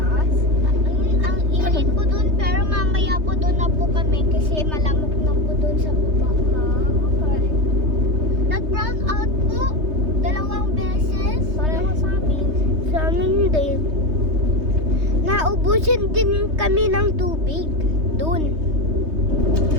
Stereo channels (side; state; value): left; late; 3.2 ms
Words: Ang init po doon, pero mamaya po doon na po kami kasi malamok na po doon sa baba. Okay. Nag-brown out po, 2 beses. Pareho sa amin. sa amin din. Naubusan din kami ng tubig. Doon.